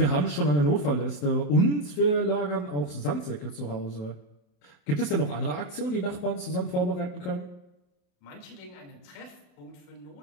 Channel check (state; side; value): late; right; 28 ms